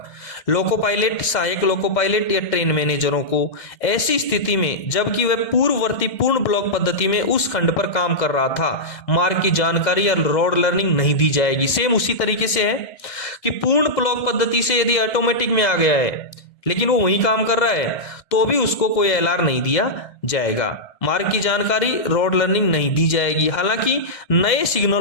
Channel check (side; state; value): right; late; 1.6 ms